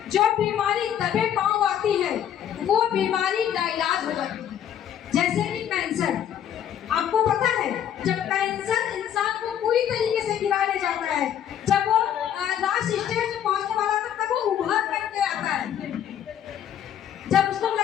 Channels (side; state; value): right; quieter; 9.8 dB